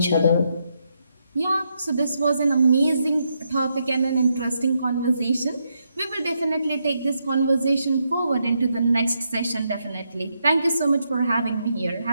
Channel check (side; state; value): both; inverted; correlation -0.81